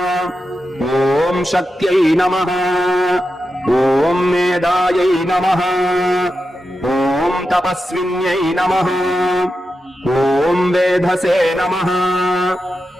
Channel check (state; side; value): normal; both; correlation 0.89